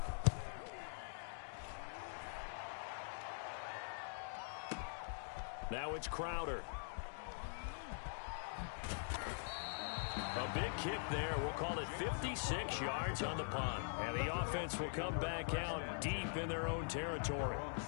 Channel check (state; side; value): silent; right; digital silence